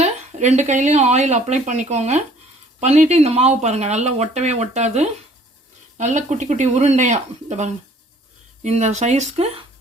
ரெண்டு கையிலையும் ஆயில் அப்ளை பண்ணிக்கோங்க. பண்ணிவிட்டு இந்த மாவு பாருங்கள், நல்லா ஒட்டவே ஒட்டாது. நல்லா குட்டி குட்டி உருண்டையாக இந்த பாருங்கள், இந்த சைஸ்க்கு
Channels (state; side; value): normal; both; correlation 0.56